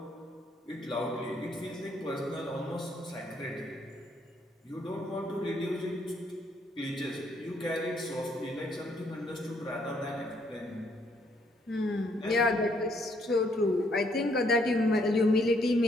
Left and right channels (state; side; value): normal; both; correlation 0.70